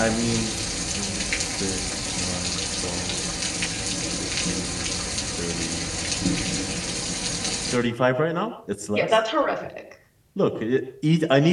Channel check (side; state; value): both; identical; correlation 1.00